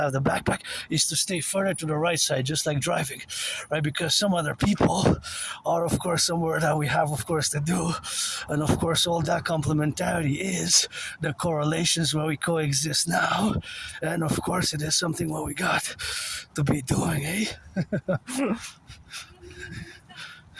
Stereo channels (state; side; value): identical; both; correlation 1.00